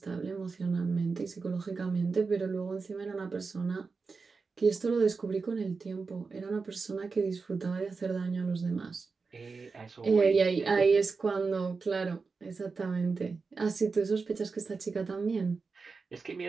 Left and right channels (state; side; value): quieter; left; 4.6 dB